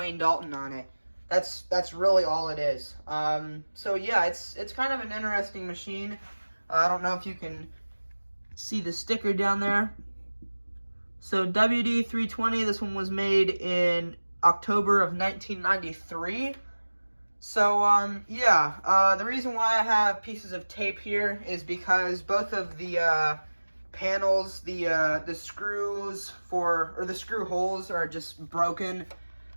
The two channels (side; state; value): both; inverted; correlation -1.00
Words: Dalton on it. That's really all it is. So yeah, it's kind of an interesting machine. I don't know if you can see the sticker down there. So WD320, this one was made in October of 1993. So yeah, the reason why I have pieces of tape here is because both of the panels, the screws the screw holes are just broken.